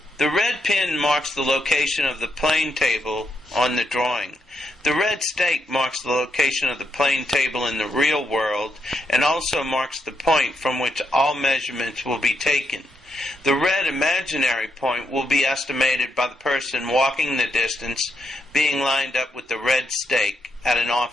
the red pin marks the location of the plane table on the drawing. The red stake marks the location of the plane table in the real world and also marks the point from which all measurements will be taken. The red imaginary point will be estimated by the person walking the distance being lined up with the red stake at an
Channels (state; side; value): normal; both; correlation 0.81